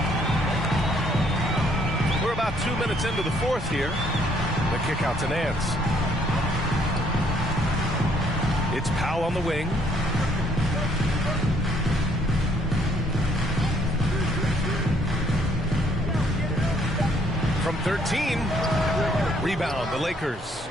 We're about 2 minutes into the fourth here. The kick out to Nance. It's Powell on the wing. From 13. Rebound, the Lakers.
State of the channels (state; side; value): normal; both; correlation 0.65